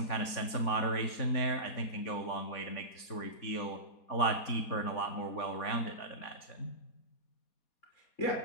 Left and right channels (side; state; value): right; late; 4.2 ms